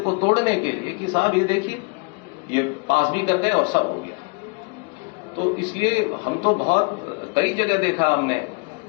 को तोड़ने के लिए कि साहब ये देखिए, ये पास भी कर गए और सब हो गया। तो इसलिए हम तो बहुत कई जगह देखा हमने।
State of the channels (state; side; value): quieter; right; 33.9 dB